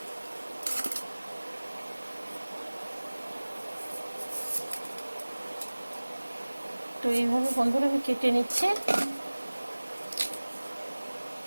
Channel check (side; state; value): both; inverted; correlation -1.00